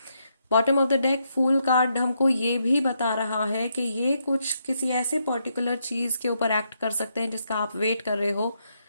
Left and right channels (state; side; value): inverted; both; correlation -0.79